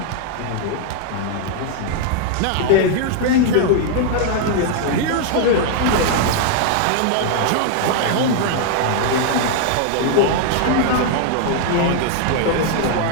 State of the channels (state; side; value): different; both; correlation 0.00